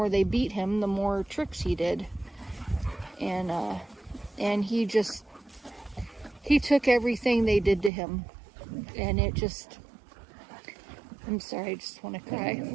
they beat him, the more tricks he did. And he took everything they did to him, and it just, I'm sorry, I just want to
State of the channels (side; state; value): left; drops out; at 7.9 s